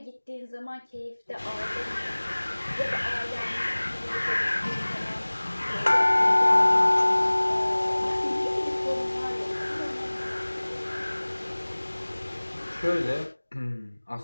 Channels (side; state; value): both; inverted; correlation -1.00